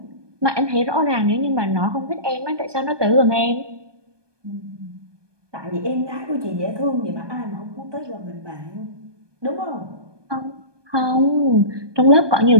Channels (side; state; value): left; late; 1.2 ms